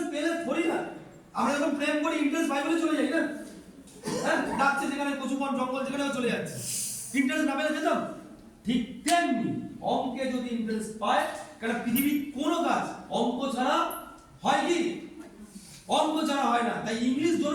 পেলে থরি না, আমরা যখন প্রেম করি ইন্টারেস্ট পাই বলে চলে যাই না, হ্যাঁ ডাকছে যেখানে কচুবন জঙ্গল যেখানেও চলে যাচ্ছে, ইন্টারেস্ট না পেলে যেতাম। ঠিক তেমনি অঙ্কে যদি ইন্টারেস্ট পায়, কারণ পৃথিবীর কোনো কাজ অঙ্ক ছাড়া হয় কি? অঙ্ক ছাড়া হয় না। তাই ইংলিশ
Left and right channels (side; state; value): both; identical; correlation 1.00